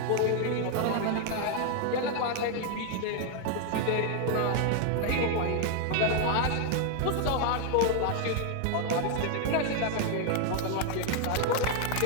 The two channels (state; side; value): different; both; correlation 0.00